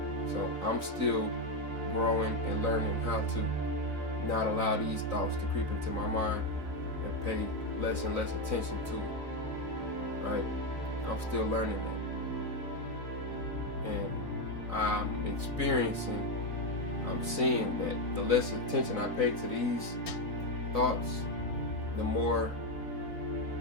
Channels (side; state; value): right; late; 3.9 ms